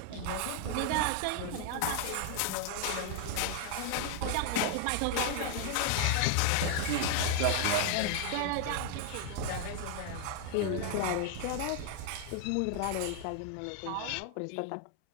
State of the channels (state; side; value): different; both; correlation 0.00